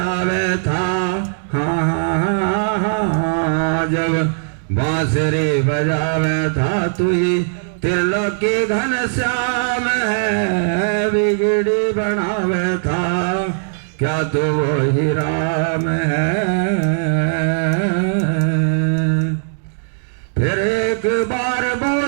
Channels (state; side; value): silent; left; digital silence